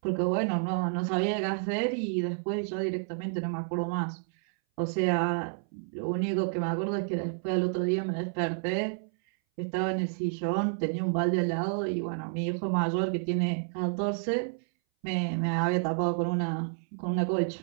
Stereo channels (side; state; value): left; silent; 58 dB below the other